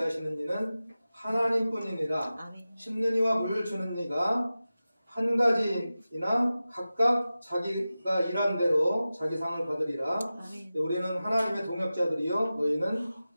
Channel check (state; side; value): inverted; both; correlation -0.95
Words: 이는 하나님뿐이니라. 아멘. 심는 이와 물 주는 이가 한 가지이나 각각 자기가 일한 대로 자기 상을 받으리라. 아멘. 우리는 하나님의 동역자들이요 너희는